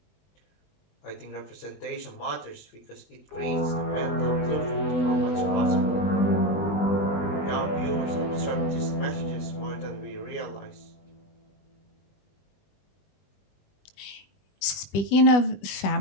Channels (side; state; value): right; late; 20 ms